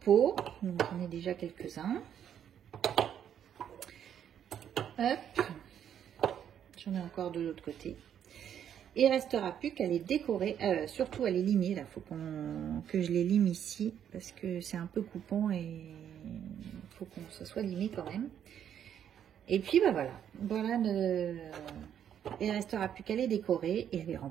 J'en ai déjà quelques-uns. Hop. J'en ai encore de l'autre côté. Il ne restera plus qu'à les décorer, surtout à les limer. Là, il faut que je les lime ici parce que c'est un peu coupant et il faut que ça soit limé quand même. Et puis bah voilà, il ne restera plus qu'à les décorer et à les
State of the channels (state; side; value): quieter; left; 9.4 dB